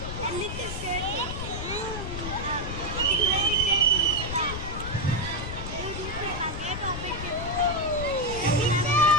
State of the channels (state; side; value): noise; left; rumble, 6 dB below the sound